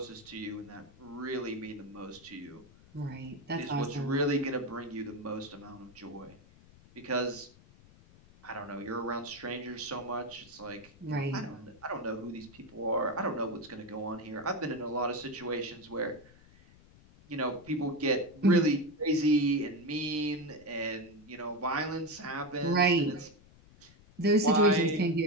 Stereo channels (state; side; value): noise; left; rumble, 24 dB below the sound